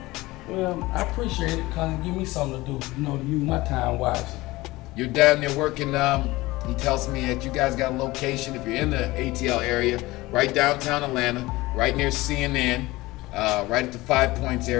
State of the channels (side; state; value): right; quieter; 19.9 dB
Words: Well, I appreciate it because it give me something to do, to use my time wisely. You're down there working, he tells me that you guys got a location, if you're in the ATL area, right downtown Atlanta, right near CNN, right at the 5 Points